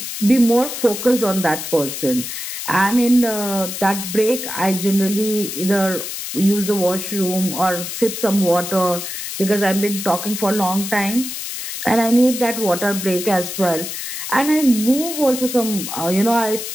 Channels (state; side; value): noise; left; hiss, 6 dB below the sound